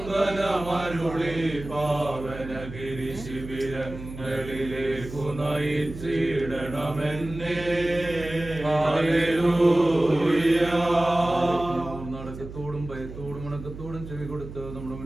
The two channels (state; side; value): noise; right; hum, 12 dB below the sound